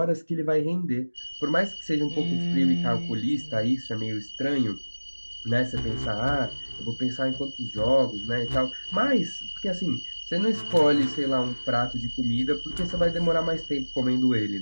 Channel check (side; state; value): both; inverted; correlation -1.00